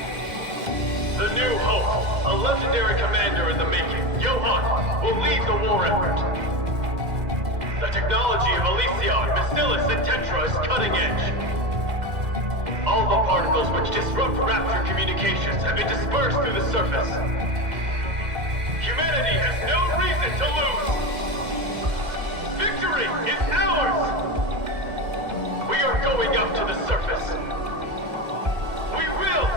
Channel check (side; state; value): left; late; 2.1 ms